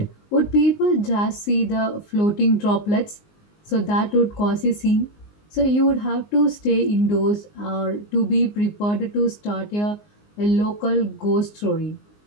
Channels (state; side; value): late; right; 19 ms